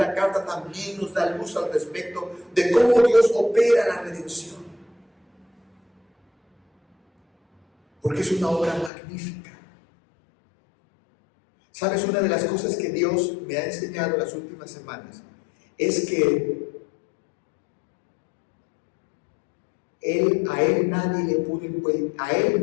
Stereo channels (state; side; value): drops out; right; at 8.9 s